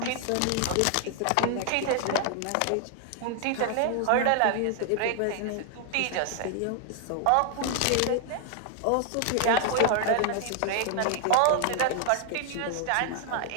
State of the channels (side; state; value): both; different; correlation 0.00